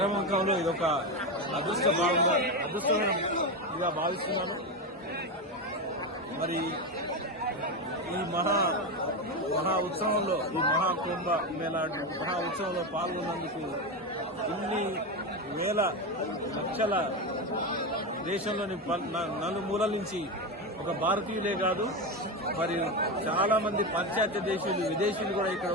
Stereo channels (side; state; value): both; normal; correlation 0.15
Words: ఇదొక అదృష్టంగా భావిస్తున్నాను. మరి ఈ మహా ఉత్సవంలో, ఈ మహాకుంభ మేళా మహా ఉత్సవంలో పాల్గొన్నందుకు ఇన్ని వేల లక్షల దేశంలోని నలుమూలల నుంచి ఒక భారతీయులే కాదు, మరి చాలా మంది పాశ్చాత్య దేశీయులు, విదేశీయులు కూడా ఇక్కడ